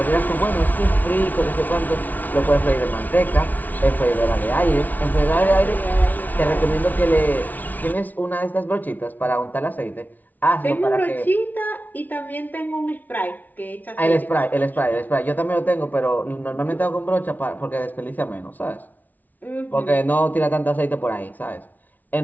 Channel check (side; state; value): right; late; 0.079 ms